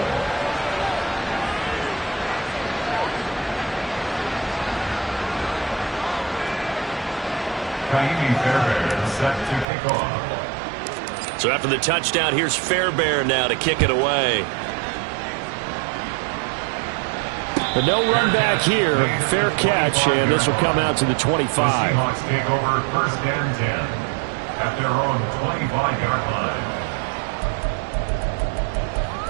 Fairbairn set to kick off. So after the touchdown, here's Fairbairn now to kick it away. But no run back here. Fair catch, and this will come out to the 25. The Seahawks take over 1st and 10 at their own 25-yard line.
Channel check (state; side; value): drops out; left; at 9.7 s